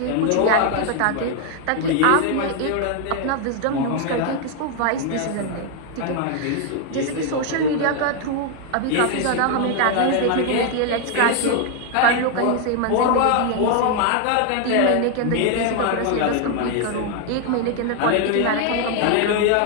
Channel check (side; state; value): both; different; correlation 0.00